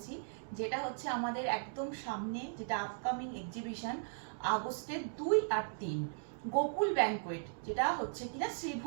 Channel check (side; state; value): left; silent; digital silence